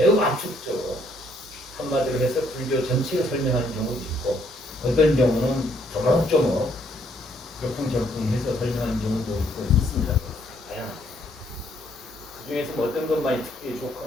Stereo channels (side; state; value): both; normal; correlation 0.68